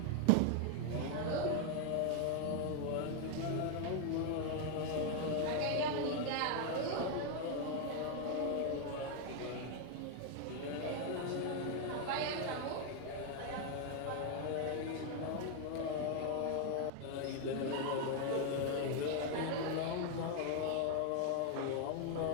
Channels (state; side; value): different; both; correlation 0.00